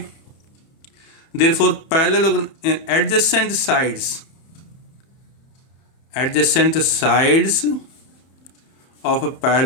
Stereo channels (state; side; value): late; right; 30 ms